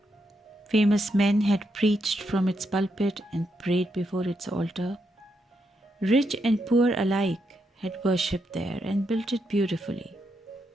Famous men had preached from its pulpit and prayed before its altar. Rich and poor alike had worshipped there and built it beautifully.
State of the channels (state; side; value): normal; both; correlation 0.81